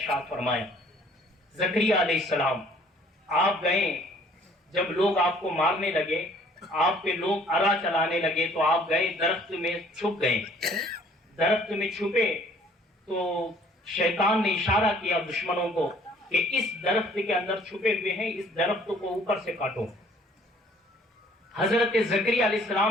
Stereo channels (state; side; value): normal; both; correlation 0.57